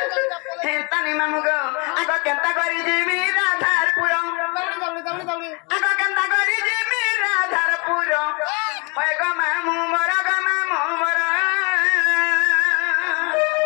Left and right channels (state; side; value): quieter; right; 31.3 dB